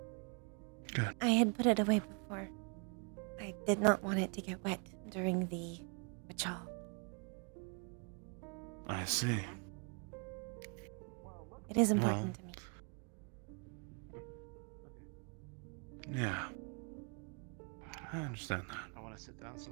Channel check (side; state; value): left; quieter; 36.5 dB